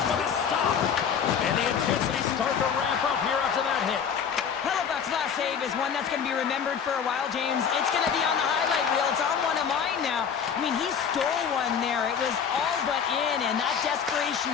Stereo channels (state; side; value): quieter; right; 7.3 dB